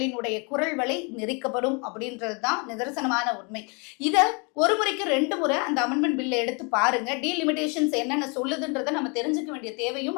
குரல் வலை நெரிக்கப்படும் அப்படின்றது தான் நிதர்சனமான உண்மை. இத ஒரு முறைக்கு 2 முறை அந்த அமெண்ட்மெண்ட் பில்லை எடுத்து பாருங்க. டீலிமிட்டேஷன்ஸ் என்னென்ன சொல்லுதுன்றதை நம்ம தெரிஞ்சுக்க வேண்டிய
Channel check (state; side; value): quieter; right; 32.8 dB